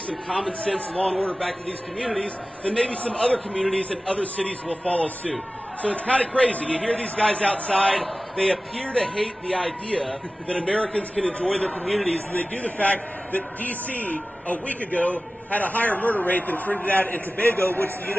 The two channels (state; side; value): normal; both; correlation 0.96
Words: some common sense law and order back to these communities, then maybe some other communities and other cities will follow suit. So it's kind of crazy. You hear these guys outside. They appear to hate the idea that Americans can enjoy their communities, and they do the fact that D.C. a week ago had a higher murder rate than Trinidad and Tobago, which the